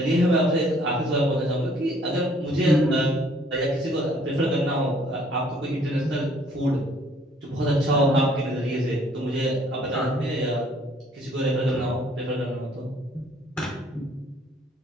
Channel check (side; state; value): both; normal; correlation 0.61